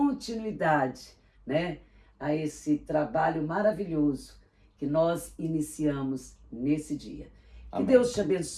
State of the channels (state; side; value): identical; both; correlation 1.00